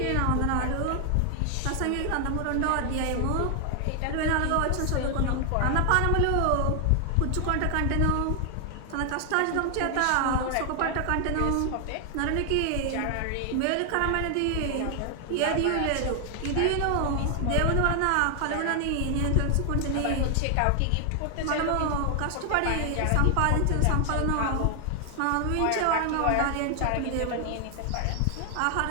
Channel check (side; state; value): both; different; correlation 0.00